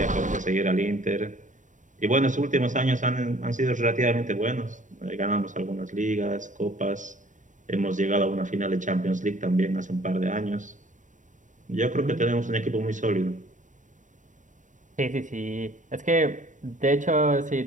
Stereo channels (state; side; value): late; left; 0.37 ms